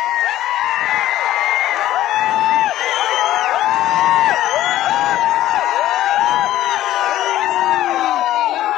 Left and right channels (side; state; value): right; quieter; 13.9 dB